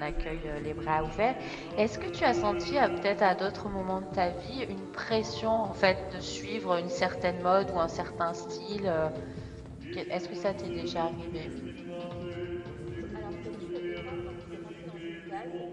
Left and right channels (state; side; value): identical; both; correlation 1.00